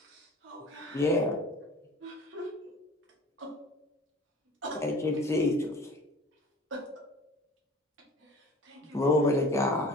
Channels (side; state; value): both; normal; correlation 0.44